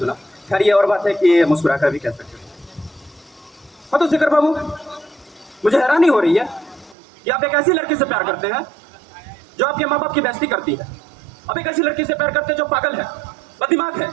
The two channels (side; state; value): left; drops out; at 7.0 s